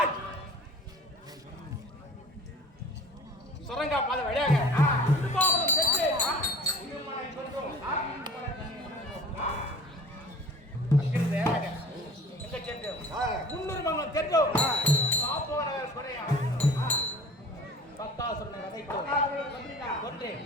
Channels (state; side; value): normal; both; correlation 0.45